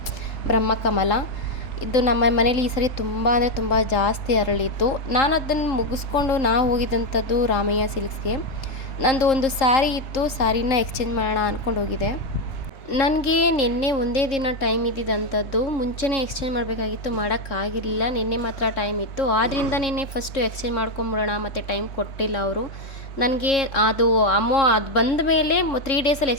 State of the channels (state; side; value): late; right; 3.7 ms